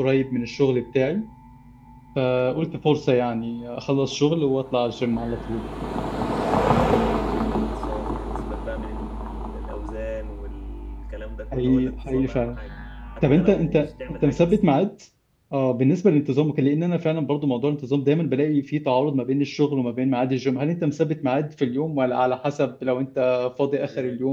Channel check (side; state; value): both; identical; correlation 1.00